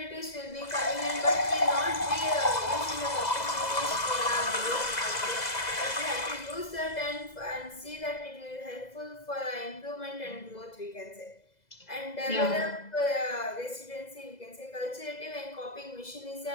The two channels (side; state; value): right; late; 2.0 ms